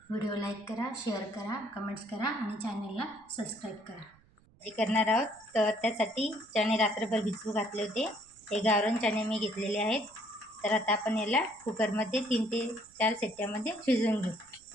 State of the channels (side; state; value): right; noise; rumble, 30 dB below the sound